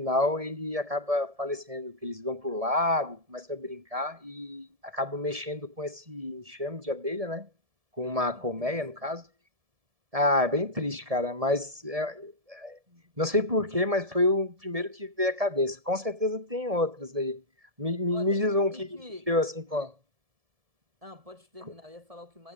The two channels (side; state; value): left; late; 1.7 ms